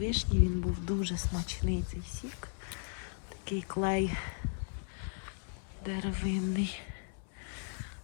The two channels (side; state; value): right; silent; digital silence